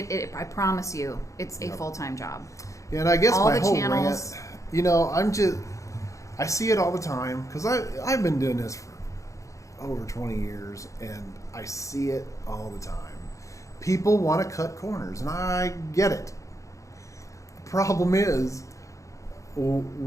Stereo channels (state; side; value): late; right; 0.15 ms